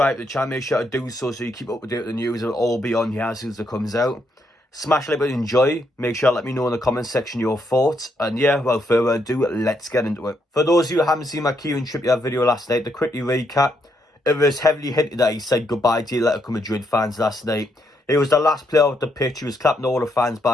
to the channel, make sure to do so you keep up to date with the news. It'll all be on here as soon as it comes out. Smash like button, enjoy. Make sure to let me know in the comment section your thoughts. And yeah, without further ado, let's get into it. For those of you who haven't seen my Kieran Trippier video last night, to quickly recap, it was heavily hinted that he said goodbye to Atletico Madrid fans last night. He was the last player off the pitch. He was clapping all the fans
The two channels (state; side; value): normal; both; correlation 0.77